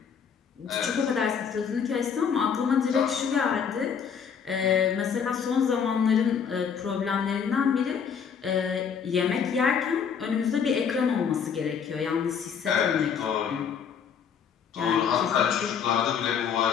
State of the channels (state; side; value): quieter; right; 7.1 dB